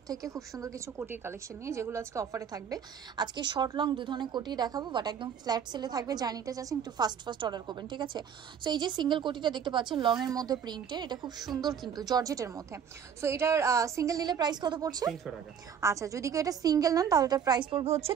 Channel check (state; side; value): quieter; left; 7.8 dB